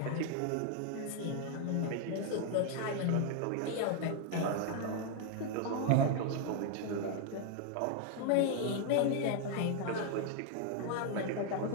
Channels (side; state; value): both; different; correlation 0.00